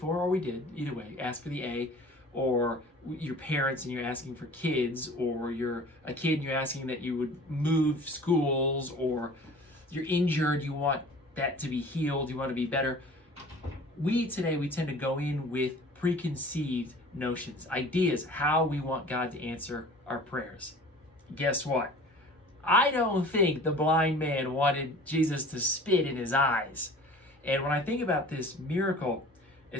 or we did, either way, ask for the A, or your parents and you're asking for kids, or you're a kid and you're asking that you would move schools, or you're injured, you want that to be healed, you want to be better. We tend to go in with preconceived notions, ideas, how we want God to answer our prayers. Guess what? I don't think the blind man wanted Jesus to spit in his eyes. And when I think about this miracle,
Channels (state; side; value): normal; both; correlation 0.44